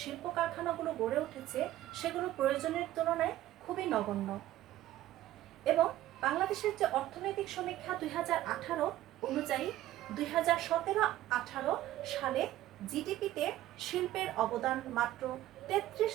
শিল্প কারখানাগুলো গড়ে উঠেছে সেগুলো প্রয়োজনের তুলনায় খুবই নগণ্য এবং বাংলাদেশের যে অর্থনৈতিক সমীক্ষা 2018 অনুযায়ী 2017-18 সালে জিডিপিতে শিল্পের অবদান মাত্র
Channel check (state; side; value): quieter; left; 14.3 dB